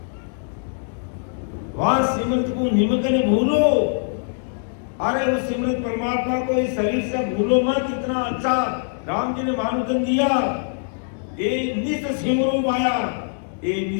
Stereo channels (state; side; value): silent; right; digital silence